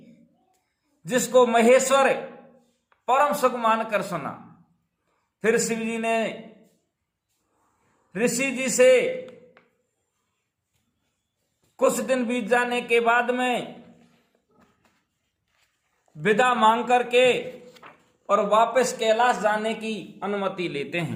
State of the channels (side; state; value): both; identical; correlation 1.00